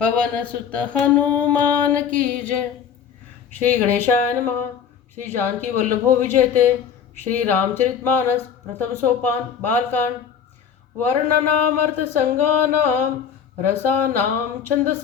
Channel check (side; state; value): right; quieter; 7.6 dB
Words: पवन सुत हनुमान की जय। श्री गणेशाय नमः। श्री जानकी वल्लभो विजयते। श्री रामचरितमानस प्रथम सोपान बालकांड। वर्णनामर्थ संगानाम रसानाम